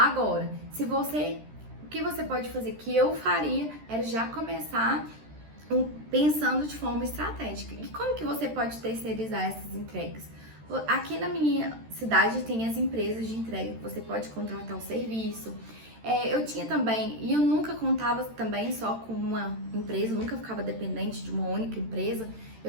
o que você pode fazer, que eu faria, era já começar pensando de forma estratégica. E como que você pode terceirizar essas entregas? Aqui na minha cidade tem as empresas de entrega, que você pode contratar o serviço. Eu tinha também, e eu nunca contava também só com uma empresa, nunca ficava dependente de uma única empresa.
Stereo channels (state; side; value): late; left; 13 ms